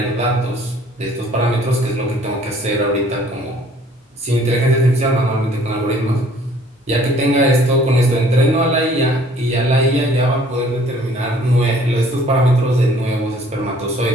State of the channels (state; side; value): normal; both; correlation 0.57